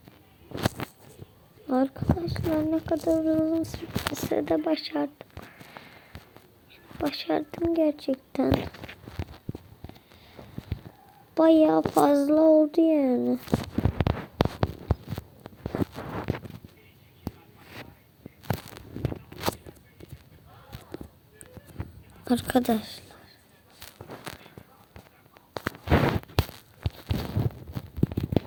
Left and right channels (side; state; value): both; identical; correlation 1.00